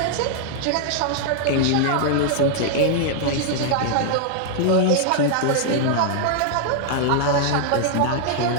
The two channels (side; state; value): both; different; correlation 0.00